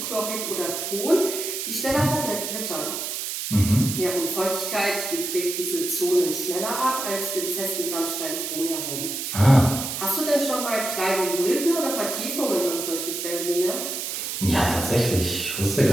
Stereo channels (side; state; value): right; noise; hiss, 4 dB below the sound